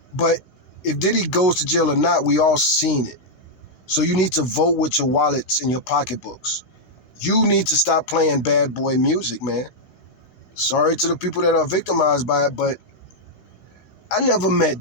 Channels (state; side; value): late; right; 16 ms